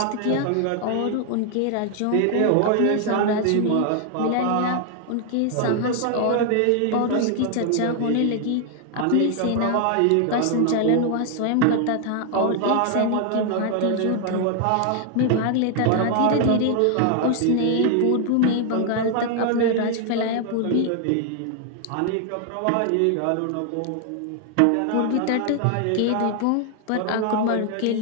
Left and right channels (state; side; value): different; both; correlation 0.00